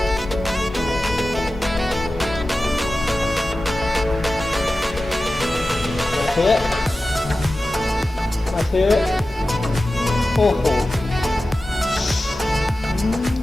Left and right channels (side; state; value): both; normal; correlation 0.95